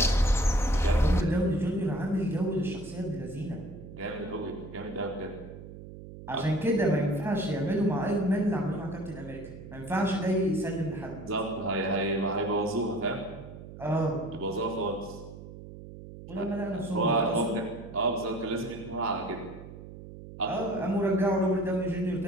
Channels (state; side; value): noise; right; hum, 14 dB below the sound